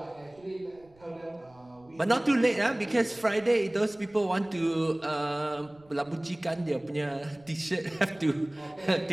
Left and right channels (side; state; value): right; noise; rumble, 29 dB below the sound